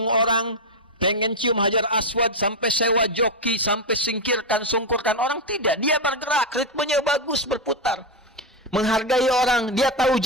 orang, pengen cium hajar aswad, sampai sewa joki, sampai singkirkan, sungkurkan orang. Tidak, dia bergerak, ritmenya bagus, berputar. Menghargai orang, dia tahu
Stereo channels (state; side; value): normal; both; correlation 0.06